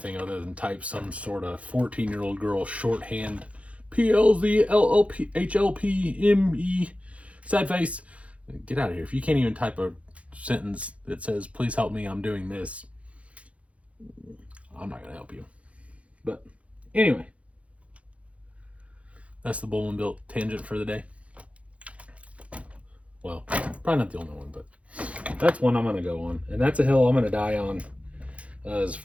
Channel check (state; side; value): late; left; 0.064 ms